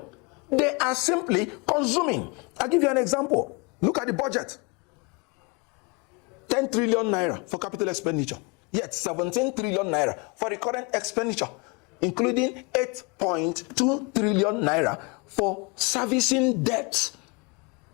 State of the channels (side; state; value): right; quieter; 29.2 dB